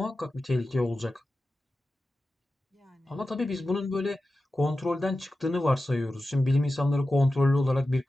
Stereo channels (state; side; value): normal; both; correlation 0.93